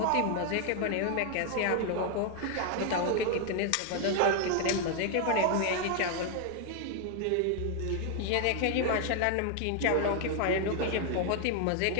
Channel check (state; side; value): different; both; correlation 0.00